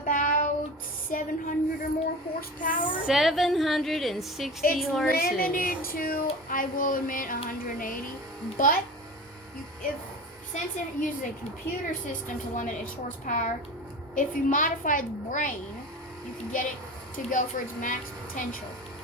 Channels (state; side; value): normal; both; correlation 0.33